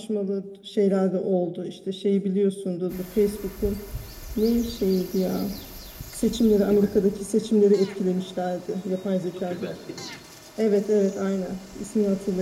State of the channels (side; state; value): both; identical; correlation 1.00